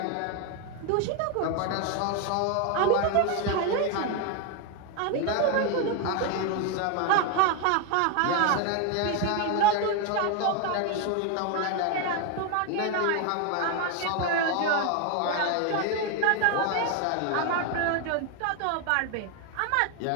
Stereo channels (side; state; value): both; different; correlation 0.01